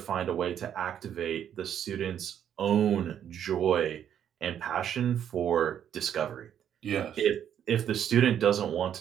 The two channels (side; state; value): left; quieter; 9.5 dB